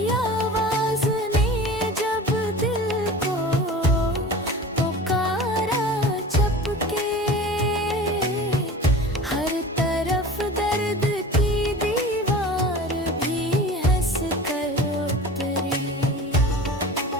आवाज ने जब दिल को पुकारा चपके, हर तरफ दर्द की दीवार भी हंस कर उतरी।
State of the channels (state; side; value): normal; both; correlation 0.37